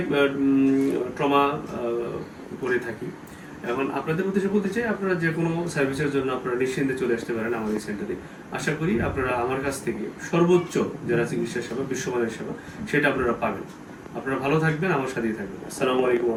ট্রমা করে থাকি। এখন আপনাদের উদ্দেশ্যে বলতে চাই, আপনারা যে কোনো সার্ভিসের জন্য আপনারা নিশ্চিন্তে চলে আসতে পারেন আমার এই সেন্টারে। আশা করি আপনারা আমার কাছ থেকে সর্বোচ্চ যারা চিকিৎসা সেবা, বিশ্বমানের সেবা, সেটা আপনারা পাবেন। আপনারা ভালো থাকবেন, আমার সাথেই থাকবেন। আসসালামু আলাইকুম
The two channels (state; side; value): identical; both; correlation 1.00